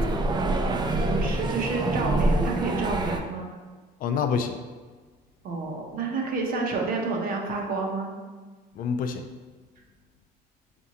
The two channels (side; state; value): both; normal; correlation 0.52